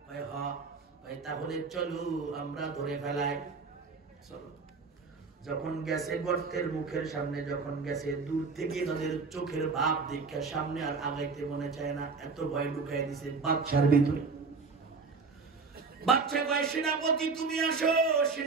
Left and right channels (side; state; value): left; quieter; 4.6 dB